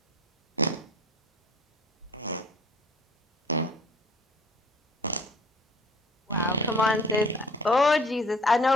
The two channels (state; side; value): normal; both; correlation 0.53